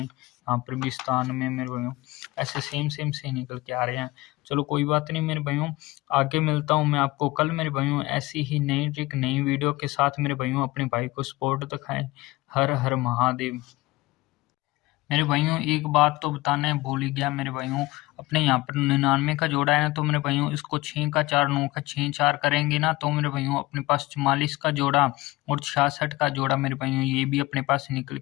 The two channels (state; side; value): quieter; right; 19.9 dB